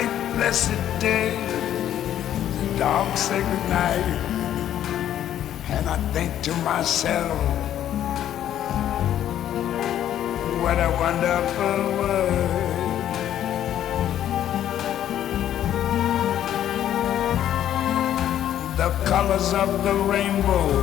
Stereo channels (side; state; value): right; quieter; 11.2 dB